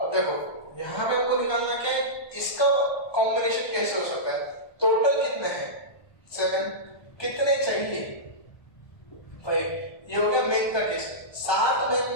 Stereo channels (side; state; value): right; late; 1.2 ms